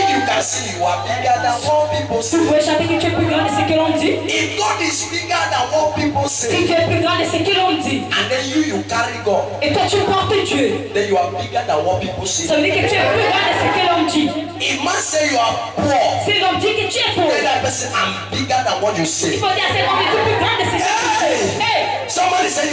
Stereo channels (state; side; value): identical; both; correlation 1.00